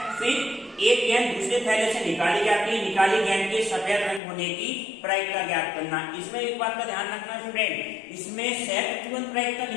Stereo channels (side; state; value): right; drops out; at 4.2 s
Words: फिर एक गेंद दूसरे थैले से निकाली जाती है, निकाली गेंद के सफेद रंग होने की प्रायिकता ज्ञात करना। इसमें एक बात का ध्यान रखना स्टूडेंट, इसमें सहप्रतिबंध प्रायिकता